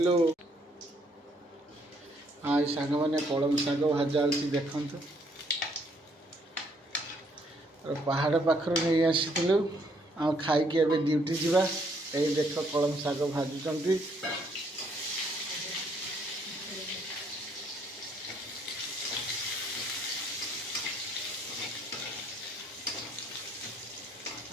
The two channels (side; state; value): both; normal; correlation 0.68